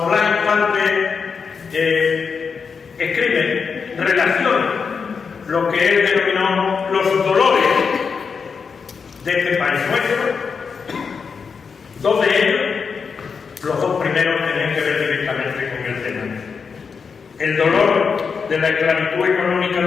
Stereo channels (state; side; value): quieter; right; 5.7 dB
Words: Blas Infante escribe, relaciona lo que él denominó los dolores de este país nuestro, dos de ellos, los dos primeros, tienen que ver directamente con el tema. El dolor de la esclavitud económica